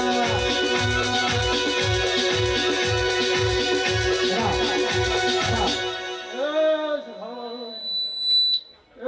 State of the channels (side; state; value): both; identical; correlation 1.00